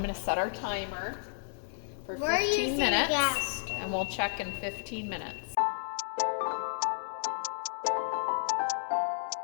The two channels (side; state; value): right; silent; digital silence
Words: going to set our timer for 15 minutes. Gas stove. And we'll check in 15 minutes.